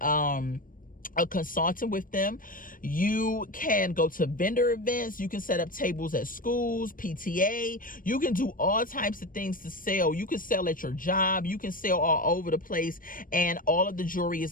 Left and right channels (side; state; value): right; late; 0.40 ms